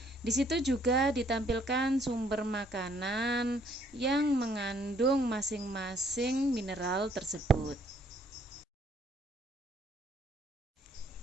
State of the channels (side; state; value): both; normal; correlation 0.65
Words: Di situ juga ditampilkan sumber makanan yang mengandung masing-masing mineral tersebut.